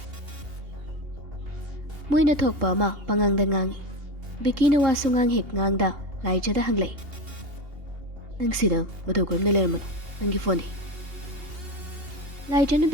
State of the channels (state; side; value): late; left; 2.8 ms